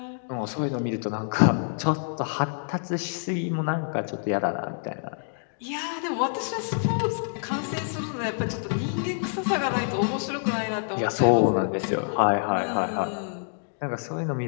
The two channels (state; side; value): silent; right; digital silence